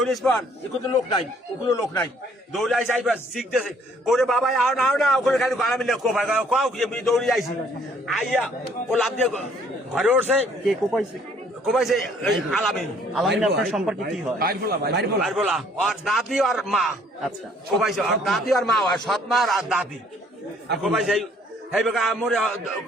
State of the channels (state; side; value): normal; both; correlation 0.61